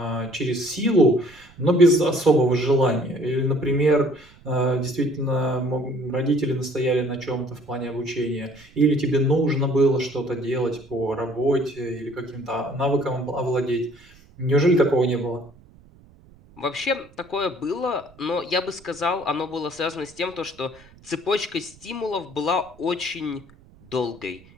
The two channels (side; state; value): right; noise; rumble, 26 dB below the sound